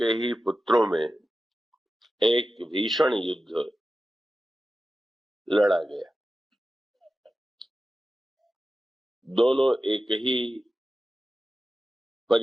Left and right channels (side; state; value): both; normal; correlation 0.93